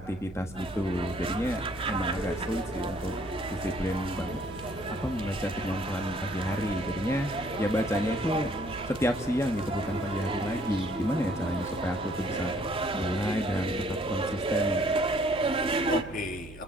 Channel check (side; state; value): right; noise; hum, 17 dB below the sound